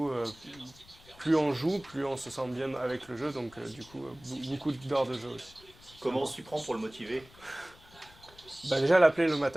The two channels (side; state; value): left; noise; rumble, 24 dB below the sound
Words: plus on joue, plus on se sent bien avec le jeu. Donc, du coup, beaucoup d'heures de jeu aussi. Comment on s'y prend pour le motiver? Déjà, l'appeler le